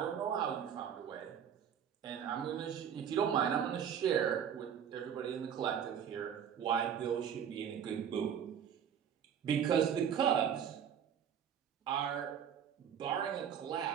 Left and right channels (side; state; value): left; quieter; 8.5 dB